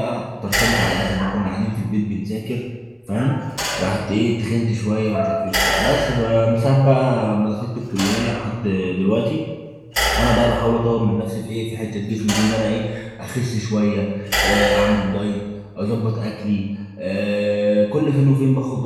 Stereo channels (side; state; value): both; identical; correlation 1.00